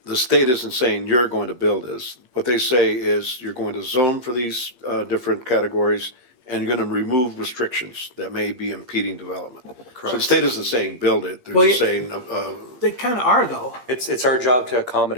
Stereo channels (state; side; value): late; left; 8.6 ms